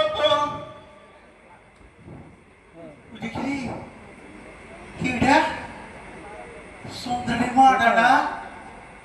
দেখি কিটা সুন্দরী মাডা না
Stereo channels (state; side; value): identical; both; correlation 1.00